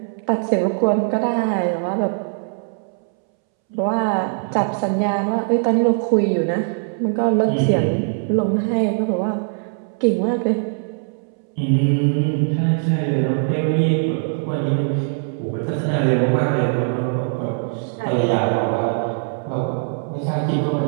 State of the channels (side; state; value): left; silent; 65 dB below the other